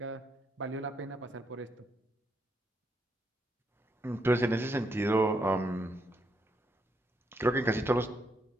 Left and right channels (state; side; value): normal; both; correlation 0.77